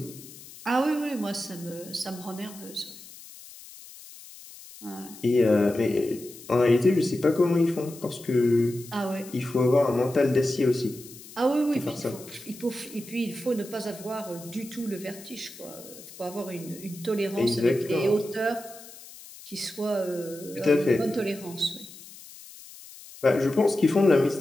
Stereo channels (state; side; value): noise; left; hiss, 18 dB below the sound